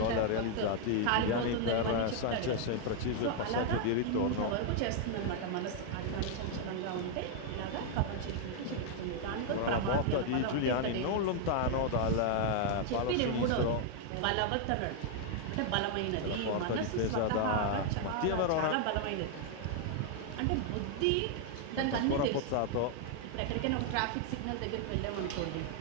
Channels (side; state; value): both; different; correlation 0.00